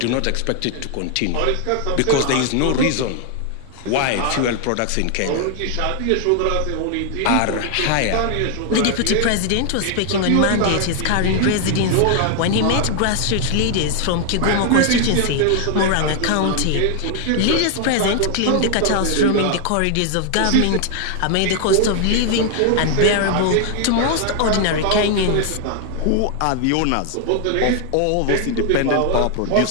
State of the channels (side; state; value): both; different; correlation 0.00